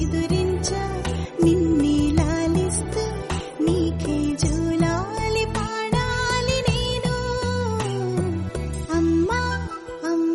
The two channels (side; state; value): both; identical; correlation 1.00